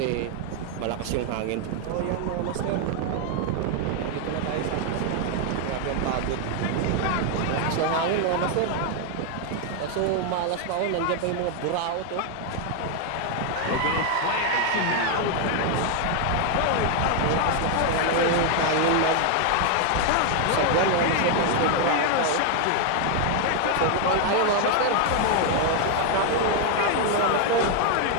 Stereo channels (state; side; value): different; both; correlation 0.01